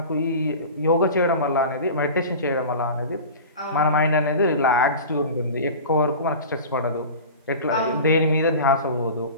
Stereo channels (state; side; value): inverted; both; correlation -0.34